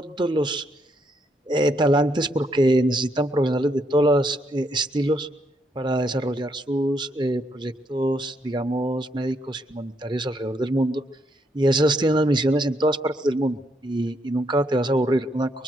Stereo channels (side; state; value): both; normal; correlation 0.75